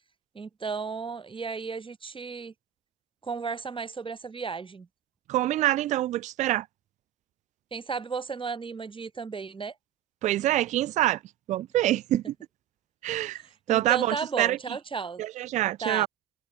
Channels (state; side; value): quieter; left; 11.1 dB